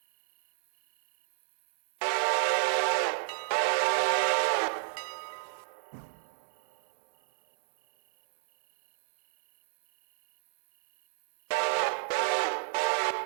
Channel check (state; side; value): silent; left; digital silence